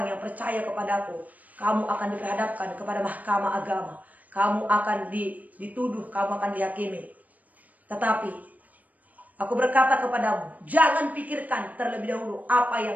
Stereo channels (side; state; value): left; late; 0.076 ms